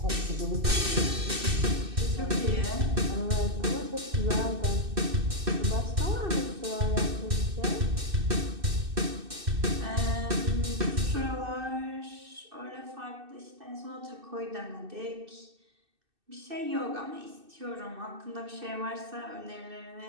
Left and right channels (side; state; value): left; late; 2.6 ms